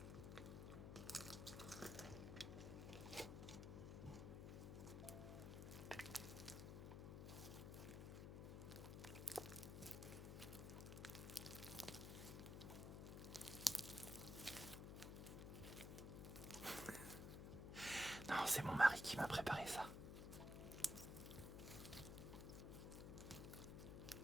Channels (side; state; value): left; noise; hum, 6 dB below the sound